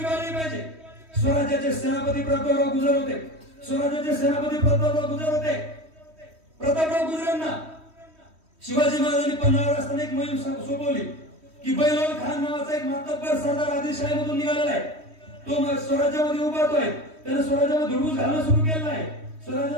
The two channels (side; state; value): left; late; 3.1 ms